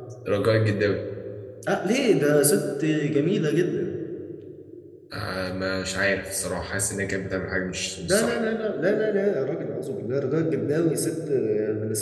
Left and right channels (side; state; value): both; identical; correlation 1.00